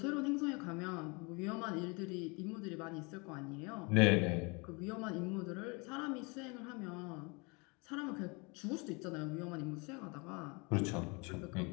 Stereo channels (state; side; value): quieter; right; 29.4 dB